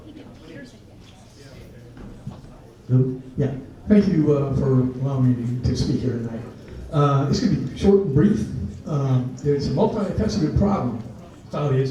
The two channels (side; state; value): both; identical; correlation 1.00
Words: Yeah, thank you for allowing me to speak here tonight. It's going to be short and brief. There's a multifaceted problem with how it